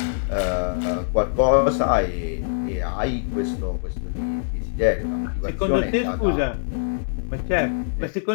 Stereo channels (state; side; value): silent; right; digital silence